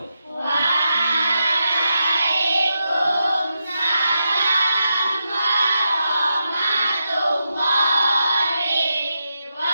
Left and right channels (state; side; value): inverted; both; correlation -0.86